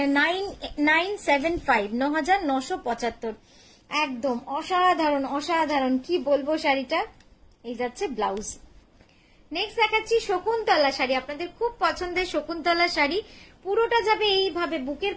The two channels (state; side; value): identical; both; correlation 1.00